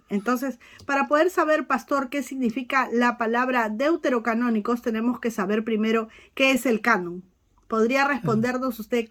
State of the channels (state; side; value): identical; both; correlation 1.00